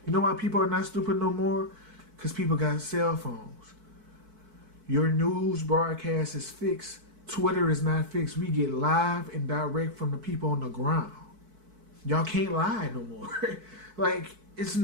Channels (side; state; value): left; late; 4.6 ms